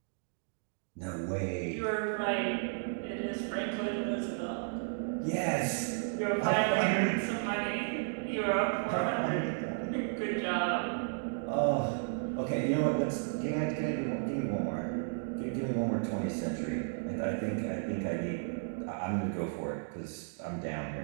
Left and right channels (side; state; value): left; silent; digital silence